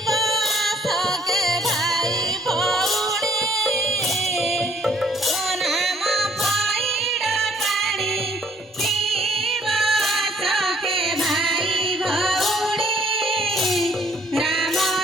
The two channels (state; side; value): normal; both; correlation 0.62